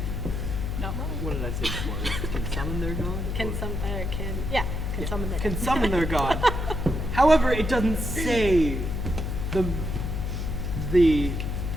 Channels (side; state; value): left; noise; hum, 3 dB below the sound